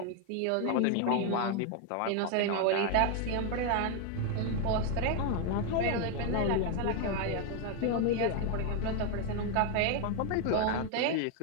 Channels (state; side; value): different; both; correlation 0.01